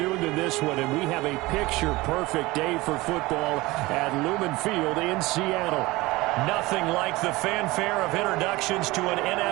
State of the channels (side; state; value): left; quieter; 20.7 dB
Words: than this one, and we have a picture-perfect day for football at Lumen Field in Seattle. Nothing like the fanfare of introductions to an